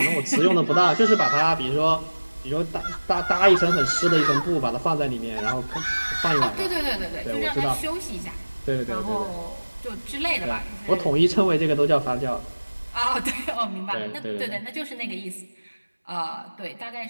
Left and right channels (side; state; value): both; inverted; correlation -1.00